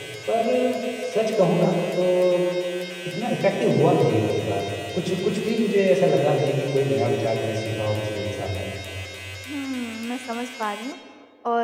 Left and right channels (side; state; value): both; identical; correlation 1.00